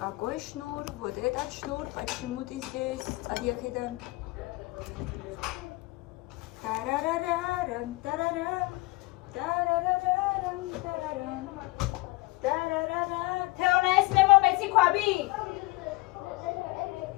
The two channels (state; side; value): quieter; right; 23.0 dB